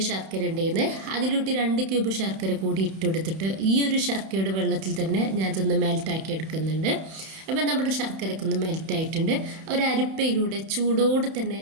ശർക്കര ഉണ്ടായിരുന്നു, അതിലോട്ട് 2 ക്യൂബ് ശർക്കര കൂടി ഇട്ടെടുത്തിട്ട് ഈ ഒരു ശർക്കരയുടെ വെള്ളത്തിൽ തന്നെ ഞാൻ ഇതൊന്ന് മെൽറ്റാക്കി എടുക്കുന്നുണ്ട്. അപ്പം നമ്മുടെ ശർക്കരയ്ക്ക് ഒന്ന് മെൽറ്റായിട്ടുണ്ട്. ഒരു അരിപ്പയിലൂടെ ചൂടോടെ തന്നെ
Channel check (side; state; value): left; late; 31 ms